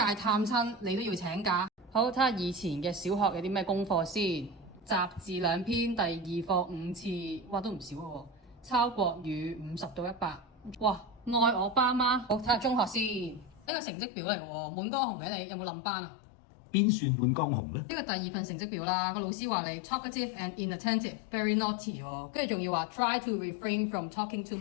探親你都要請假。好，睇下以前嘅小學有啲咩功課先。雜字2篇，第2課5次，哇都唔少喎。抄國語50到100。哇！愛我爸媽。好，睇下中學先。呢個成績表嚟喎，滿江紅嘅你有冇冧班啊？邊算滿江紅呢？呢個第2份成績表啦，個老師話你 talkative and inattentive，very naughty 喎，跟住仲要話 try to refrain from talking too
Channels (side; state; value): right; drops out; at 13.7 s